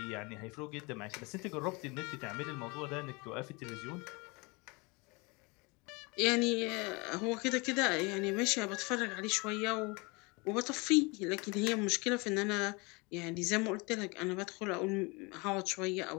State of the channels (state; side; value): quieter; right; 27.8 dB